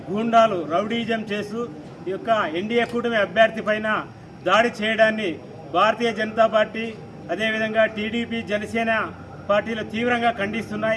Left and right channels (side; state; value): both; identical; correlation 1.00